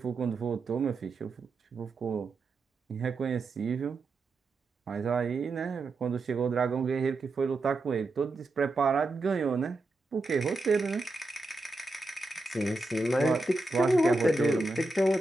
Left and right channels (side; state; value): left; quieter; 3.1 dB